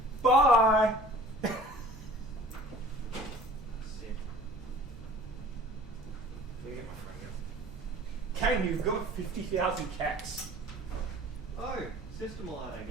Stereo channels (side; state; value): both; normal; correlation 0.47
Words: Bye! Kayne, you've got 50,000 cats. Oh, system alert